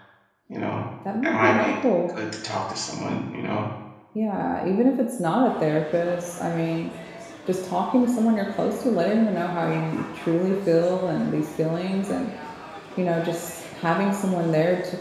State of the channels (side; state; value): both; identical; correlation 1.00